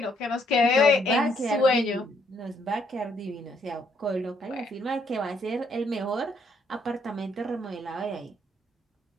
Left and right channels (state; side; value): normal; both; correlation 0.70